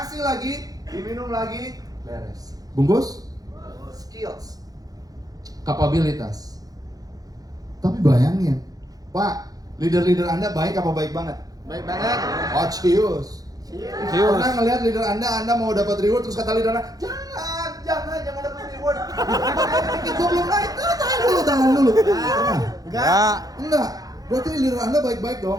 lagi, diminum lagi, beres. Bungkus? Skills. Kapabilitas. Tapi bayangin, Pak, leader-leader Anda baik apa baik banget? Baik banget. Oh, cius. Cius. Pernah ngeliat leader Anda mau dapat reward, terus kata leader Anda, jangan dapat reward. Dikit gua belum naik. Tahan dulu. Enggak. Berarti leader Anda baik-baik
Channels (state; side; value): late; left; 0.18 ms